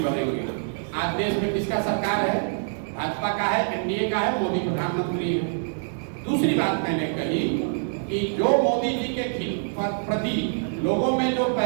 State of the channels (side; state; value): left; silent; 62 dB below the other